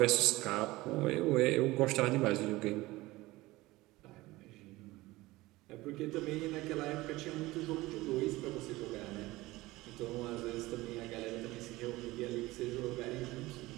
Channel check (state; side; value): quieter; left; 19.4 dB